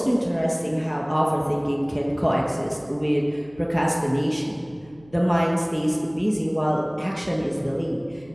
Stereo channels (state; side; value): noise; right; hum, 26 dB below the sound